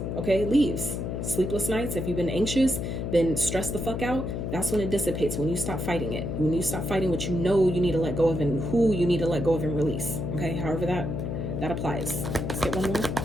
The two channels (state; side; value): noise; left; hum, 3 dB below the sound